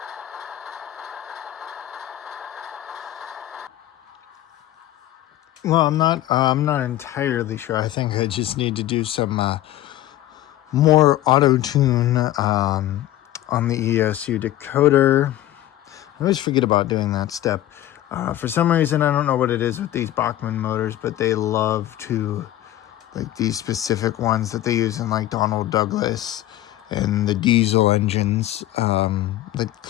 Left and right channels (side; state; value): right; quieter; 14.0 dB